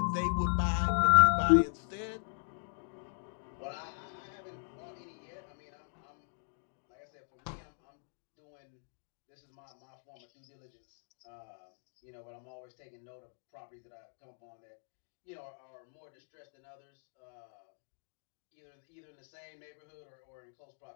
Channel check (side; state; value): right; silent; digital silence